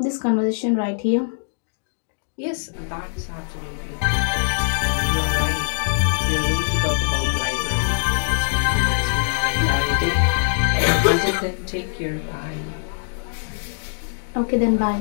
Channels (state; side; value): silent; right; digital silence